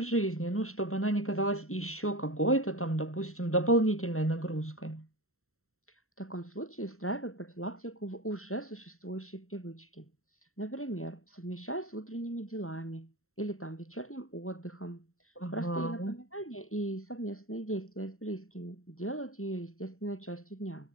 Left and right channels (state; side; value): late; right; 0.63 ms